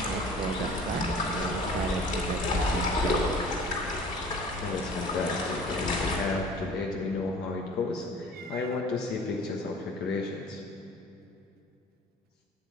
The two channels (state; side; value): normal; both; correlation 0.46